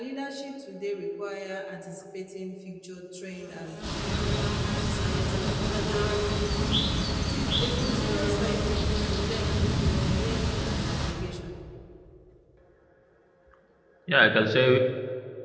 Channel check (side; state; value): both; identical; correlation 1.00